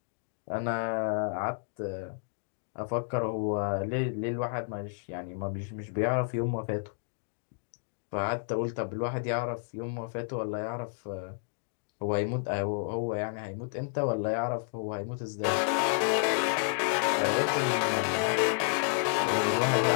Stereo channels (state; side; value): silent; right; digital silence